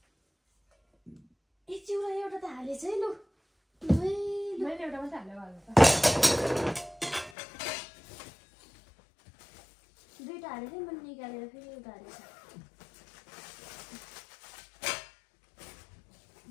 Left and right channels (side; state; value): right; drops out; at 7.3 s